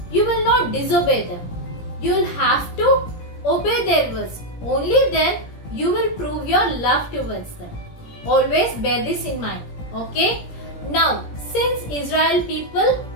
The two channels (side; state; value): right; late; 17 ms